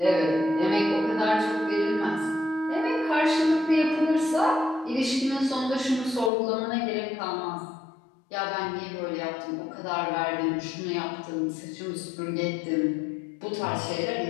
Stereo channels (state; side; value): drops out; right; at 6.3 s